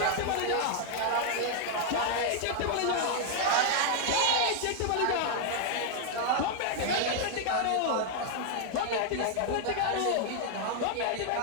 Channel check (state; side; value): different; both; correlation 0.00